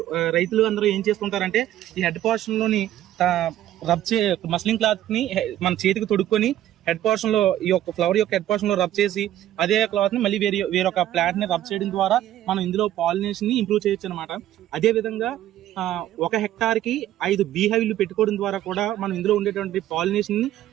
రైతులు అందరూ ఏం చేస్తుంటారంటే ఈ హెడ్ పోర్షన్ లోని మస్లింగ్ క్లాత్ ని మన చేతికి తొడుక్కొని హెడ్ పోర్షన్ లో ఈ యొక్క ఫ్లవర్ యొక్క హెడ్ పోర్షన్ లో రబ్ చేసి అదే క్లాత్ ని మళ్ళీ వేరొక ప్లాంట్ ని రబ్ చేయడం ద్వారా మనం ఇందులో పాలినేషన్ ని ఇంప్రూవ్ చేయొచ్చు అనమాట. అదే విధంగా 1 హెక్టార్ కి 5 బీహైవ్లు పెట్టుకోవడం ద్వారా కూడా మనం ఇందులో ఉండేటువంటి పాలినేషన్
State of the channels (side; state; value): left; quieter; 12.8 dB